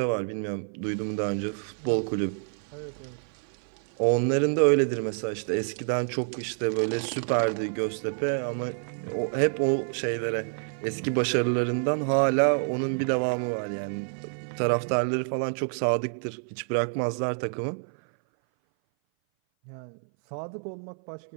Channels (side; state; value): left; silent; 57 dB below the other